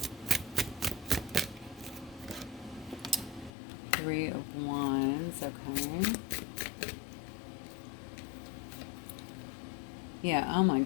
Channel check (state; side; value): drops out; right; at 3.5 s